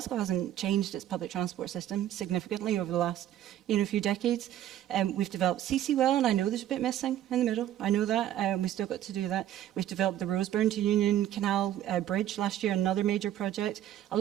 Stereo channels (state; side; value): quieter; left; 12.0 dB